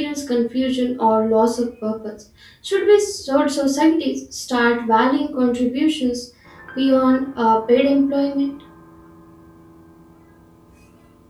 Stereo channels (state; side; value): identical; both; correlation 1.00